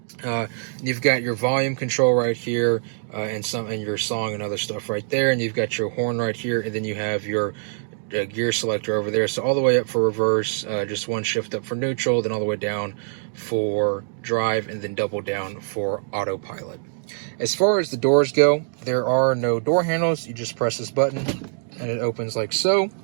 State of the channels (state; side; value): silent; left; digital silence